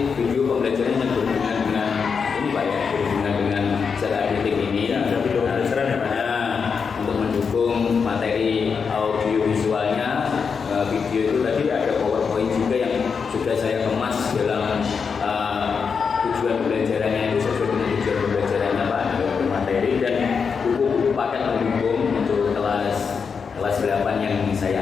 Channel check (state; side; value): quieter; right; 5.9 dB